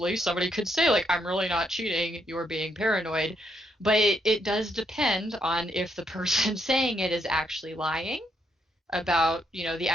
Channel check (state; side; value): normal; both; correlation 0.76